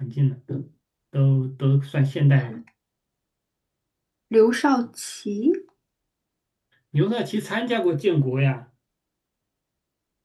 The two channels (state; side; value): identical; both; correlation 1.00